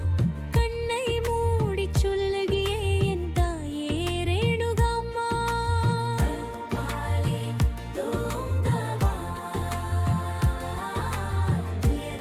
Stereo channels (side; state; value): both; identical; correlation 1.00